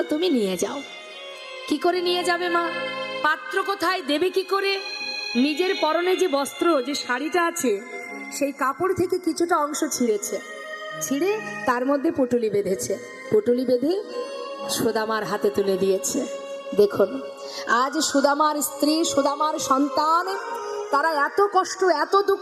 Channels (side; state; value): both; identical; correlation 1.00